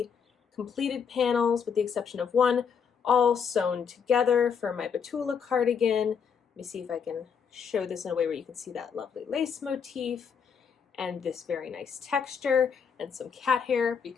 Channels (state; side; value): quieter; right; 6.7 dB